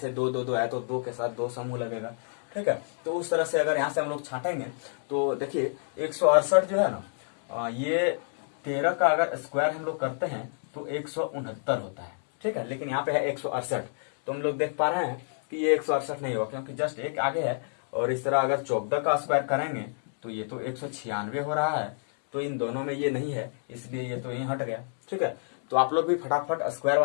2 2 2 है तो 2 के साथ 2 समूह लगेगा, ठीक है। तो उस तरह से अगर यहाँ से हम लोग छाटेंगे तो देखिए 168 जो है ना, ये 13 का अगर स्क्वायर हम लोग करते हैं तो 169 होता है, ठीक है, लेकिन यहाँ पे है 168। तो हम लोग देख पा रहे हैं कि ये 168 नहीं होगा, क्योंकि जस्ट एक आगे है। और इस तरह अगर 14 का स्क्वायर करेंगे तो ये तो 196 हो रहा है, तो इन दोनों में ये नहीं है, इसलिए ये तो यहीं हट गया, ठीक है। तो आप लोग भी फटाफट स्क्वायर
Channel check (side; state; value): right; silent; digital silence